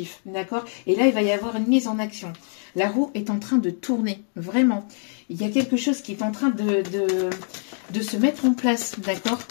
D'accord? Et là, il va y avoir une mise en action. La roue est en train de tourner. Vraiment. Il y a quelque chose qui est en train de se mettre en place. D'accord?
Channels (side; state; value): right; silent; 62 dB below the other